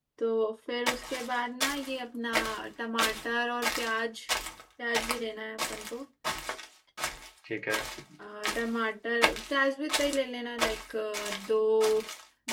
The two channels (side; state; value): both; identical; correlation 1.00